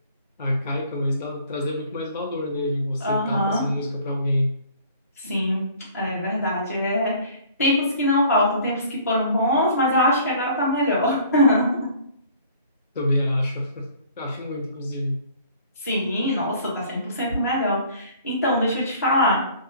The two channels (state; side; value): inverted; both; correlation -0.52